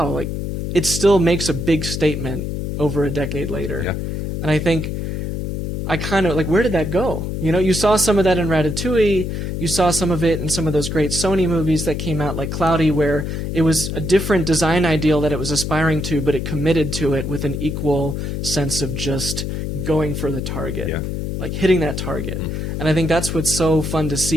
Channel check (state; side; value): noise; left; hum, 3 dB below the sound